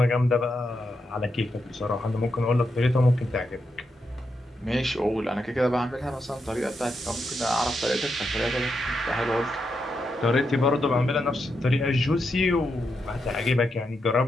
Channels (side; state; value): both; normal; correlation 0.84